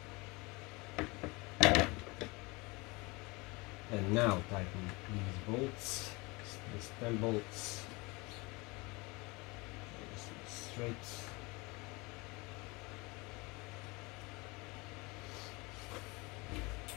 that. And now tighten these bolts, these 10 bolts. Straight.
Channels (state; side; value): quieter; right; 25.5 dB